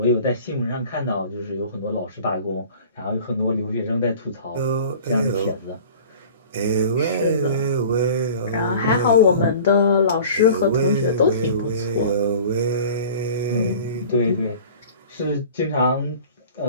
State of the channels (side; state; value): both; inverted; correlation -0.44